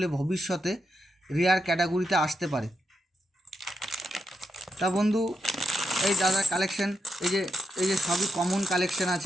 ভবিষ্যতে রেয়ার ক্যাটাগরিতে আসতে পারে। তা বন্ধু, এই দাদা কালেকশন, এই যে সবই কমন কালেকশন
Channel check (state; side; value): normal; both; correlation 0.83